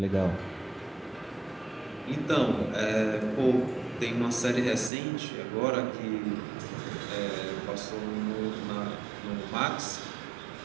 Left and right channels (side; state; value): left; drops out; at 4.9 s